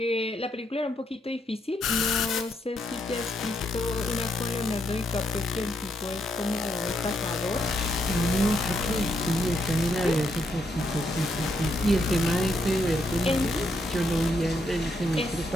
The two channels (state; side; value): normal; both; correlation 0.77